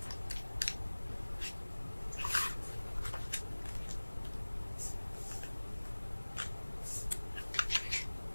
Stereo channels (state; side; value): inverted; both; correlation -1.00